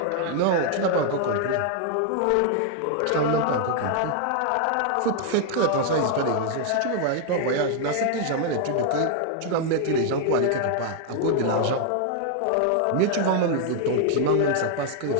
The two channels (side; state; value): both; different; correlation 0.00